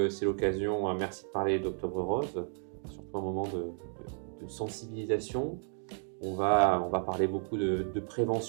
l'occasion, merci de parler d'Octobre Rose, surtout un moment de sensibilisation. On va parler beaucoup de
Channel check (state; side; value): silent; left; 55 dB below the other